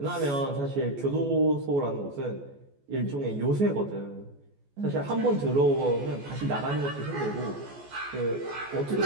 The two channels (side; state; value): left; late; 14 ms